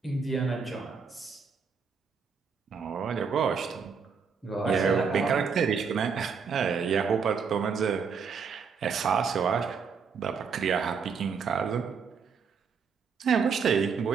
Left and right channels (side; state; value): left; quieter; 5.9 dB